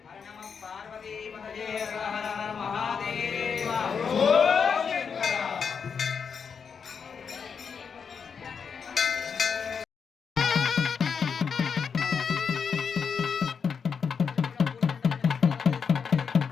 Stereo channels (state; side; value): quieter; right; 6.3 dB